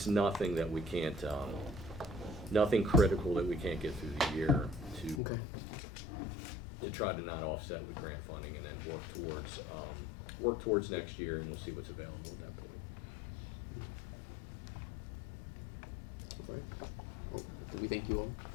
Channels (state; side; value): drops out; right; at 5.2 s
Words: nothing that we can't, nothing critical that we can't get through the year to try to not offset with grant funding, and then work towards next year, and we'll see what's available at that point. We thank you all.